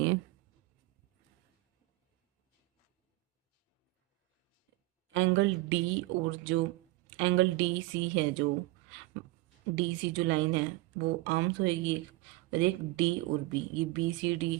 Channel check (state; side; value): quieter; left; 20.2 dB